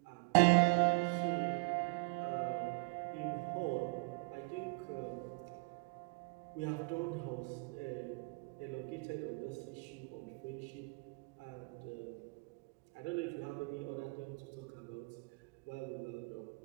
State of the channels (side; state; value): left; quieter; 31.2 dB